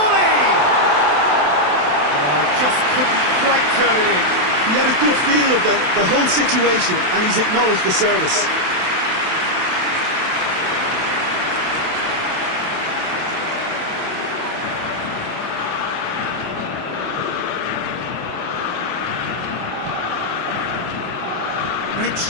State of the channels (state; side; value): late; left; 27 ms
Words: Oh, just couldn't quite turn it in. He had a good feel of the whole situation, and he's acknowledged the service. Great